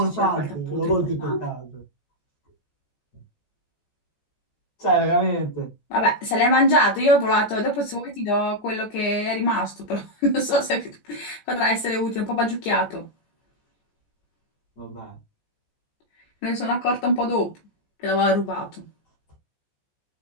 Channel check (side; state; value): right; late; 14 ms